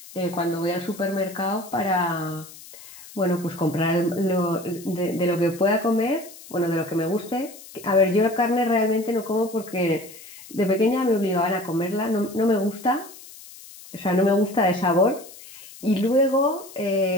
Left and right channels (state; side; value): noise; left; hiss, 18 dB below the sound